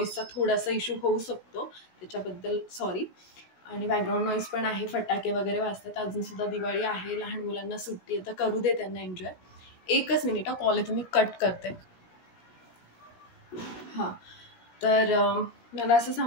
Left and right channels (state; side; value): late; right; 17 ms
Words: थोडासा इश्यू होऊ शकतो, त्याच्याबद्दल सॉरी. आणि बॅकग्राऊंड नॉईज पण आहे, फटाके वगैरे वाजतात. अजूनसुद्धा दिवाळी आहे, लहान मुलांना सुट्टी आहे, तर करू दे त्यांना एन्जॉय. एकच मिनिट, कॉल आहे, तुम्ही कट करते. हां, तर मला असं